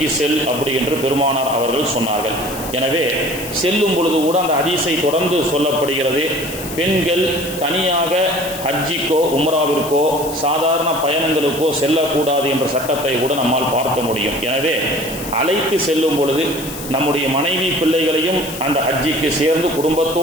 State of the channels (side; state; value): left; noise; hiss, 11 dB below the sound